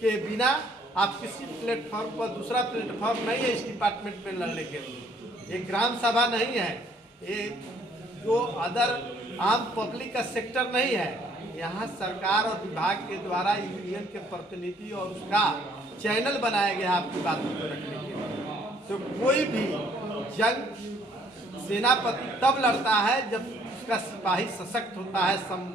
के बिना आप किसी प्लेटफॉर्म पर दूसरा प्लेटफॉर्म नहीं है इस डिपार्टमेंट में लड़ने के लिए। ये ग्राम सभा नहीं है, ये जो अदर आम पब्लिक का सेक्टर नहीं है। यहाँ सरकार और विभाग के द्वारा यूनियन के प्रतिनिधि और उसका चैनल बनाया गया आपकी बातों को रखने के लिए। तो कोई भी जंग सेनापति तब लड़ता है जब उसका सिपाही सशक्त होता है,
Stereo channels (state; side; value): normal; both; correlation 0.63